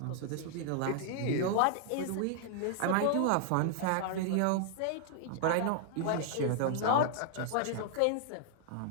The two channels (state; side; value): different; both; correlation -0.01